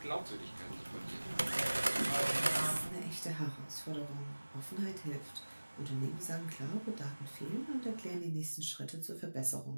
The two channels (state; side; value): inverted; both; correlation -1.00